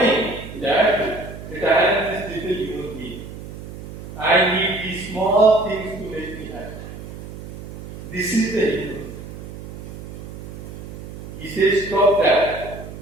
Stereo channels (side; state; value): right; noise; hum, 12 dB below the sound